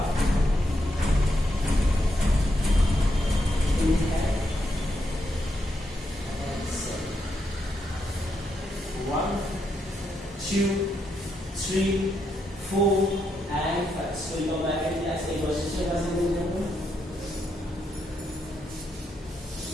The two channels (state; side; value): normal; both; correlation 0.81